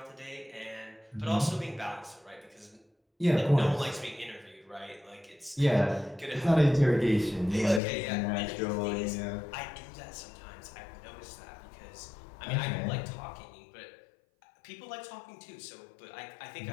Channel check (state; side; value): drops out; right; at 7.8 s